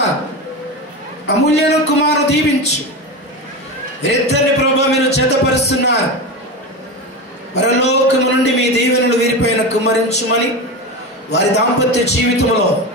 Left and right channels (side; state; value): both; normal; correlation 0.22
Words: అమూల్యను కుమారు దీవించు. వీరిద్దరిని ప్రభువా మీరు జతపరుస్తున్నారు. పరలోకము నుండి మీ దీవెనలు వీరిపైన కుమ్మరించుమని వారి దాంపత్య జీవితంలో